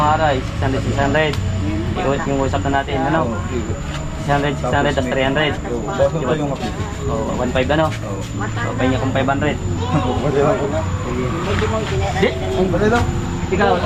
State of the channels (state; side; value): identical; both; correlation 1.00